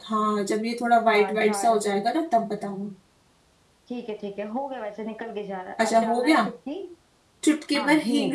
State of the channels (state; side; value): identical; both; correlation 1.00